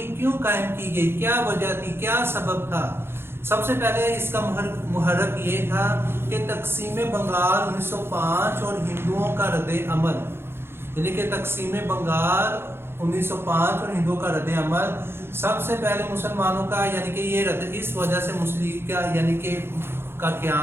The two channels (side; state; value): left; late; 0.11 ms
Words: کیوں قائم کی گئی، کیا وجہ تھی، کیا سبب تھا۔ سب سے پہلے اس کا محرک یہ تھا کہ تقسیم بنگال 1905 اور ہندوؤں کا رد عمل، یعنی کہ تقسیم بنگال 1905 اور ہندوؤں کا رد عمل سب سے پہلے مسلمانوں کا، یعنی کہ یہ رد، اس وجہ سے مسلم لیگ کا یعنی کہ کا